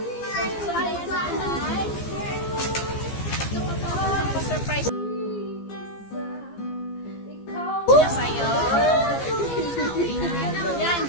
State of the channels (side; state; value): right; late; 15 ms